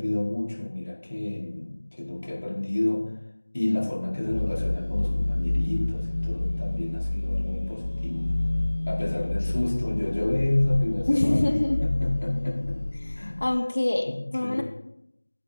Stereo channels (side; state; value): both; inverted; correlation -1.00